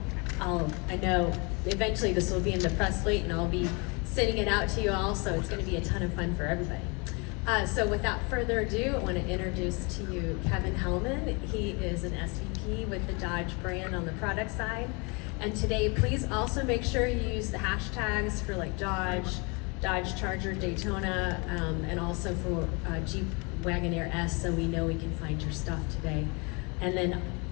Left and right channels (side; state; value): right; quieter; 30.5 dB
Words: know eventually this will be in the press suite and I'll be sending it out to you all, so it's going to be a ton of fun for everybody. So without further ado, I want to introduce to you Kevin Hellman. He is an SVP with the Dodge brand on the product side. And today, please also make sure you use the hashtags for like Dodge Charger, Daytona, and also for Jeep Wagoneer S, so we know we can find your stuff today. And then